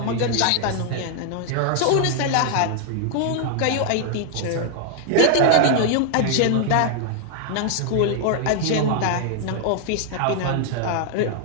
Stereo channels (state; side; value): different; both; correlation 0.00